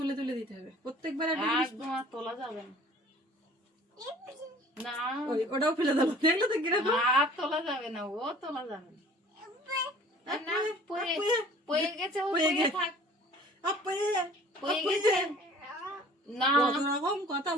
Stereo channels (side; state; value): both; normal; correlation 0.49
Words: তুলে দিতে হবে প্রত্যেকবার। একদম আর তোলা যাবে না। না ওটাও ফেলে দেবো, দেখলে তো কিরকম। আর তোলা যাবে না, ও তোলা যাবে না। না, পয়ে গেছে, ও পয়ে পয়ে গেছে। থাক, আপয়ে পয়ে গেছে। না কত রকম কথা